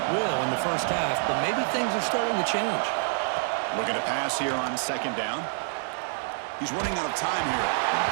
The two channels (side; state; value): left; silent; digital silence